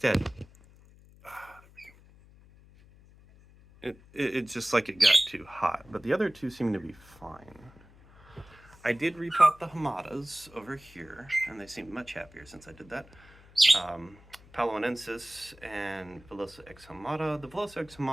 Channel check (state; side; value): noise; left; hum, 24 dB below the sound